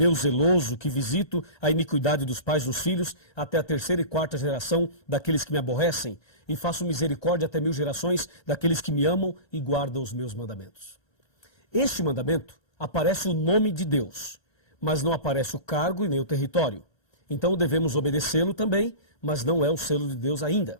zeloso, que visito a iniquidade dos pais dos filhos, até a 3ª e 4ª geração daqueles que me aborrecem, e faço misericórdia até 1000 gerações daqueles que me amam e guardam os meus mandamentos. Este mandamento aparece o nome de Deus, mas não aparece o cargo e nem o território. Então devemos obedecê-lo também, mas não é o selo de Deus ainda.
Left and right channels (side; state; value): right; late; 1.2 ms